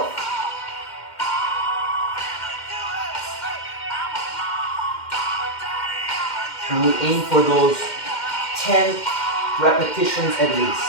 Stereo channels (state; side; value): late; right; 2.1 ms